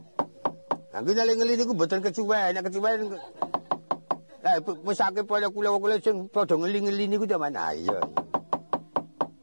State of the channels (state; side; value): inverted; both; correlation -1.00